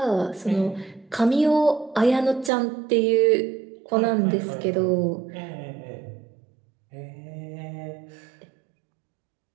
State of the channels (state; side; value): drops out; left; at 2.5 s